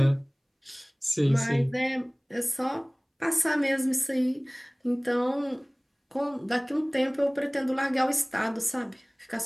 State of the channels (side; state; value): both; identical; correlation 1.00